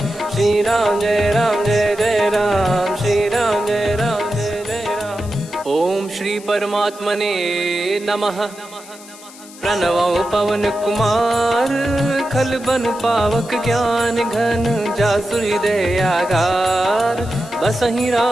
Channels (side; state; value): left; noise; hiss, 19 dB below the sound